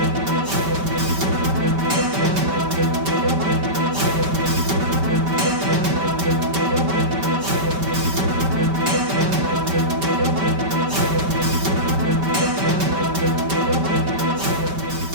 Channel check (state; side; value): late; left; 5.2 ms